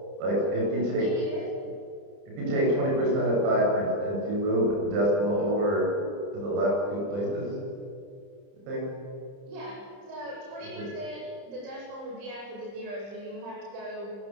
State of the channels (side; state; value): left; late; 30 ms